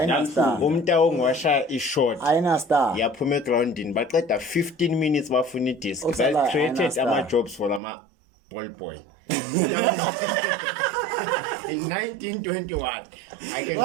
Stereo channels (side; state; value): left; drops out; at 7.8 s